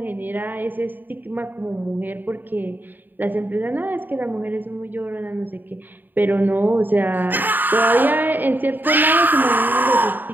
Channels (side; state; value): left; late; 0.090 ms